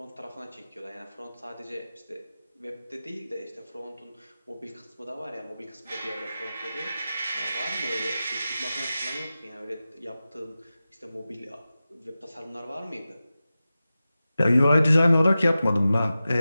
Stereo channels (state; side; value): inverted; both; correlation -0.94